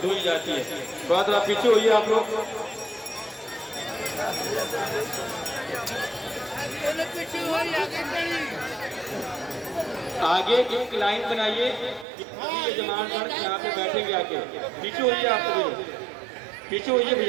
धोई जाती है। थोड़ा थोड़ा पीछे होइए आप लोग। आगे एक लाइन बनाइए, सभी यजमान गण यहाँ पे बैठेंगे आके। पीछे होइए आप सभी लोग, पीछे होइए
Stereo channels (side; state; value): left; drops out; at 12.1 s